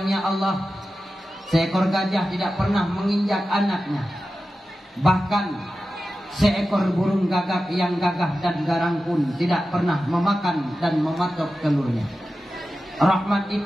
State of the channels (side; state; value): both; normal; correlation 0.93